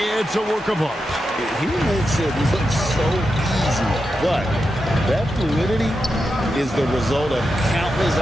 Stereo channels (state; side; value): normal; both; correlation 0.88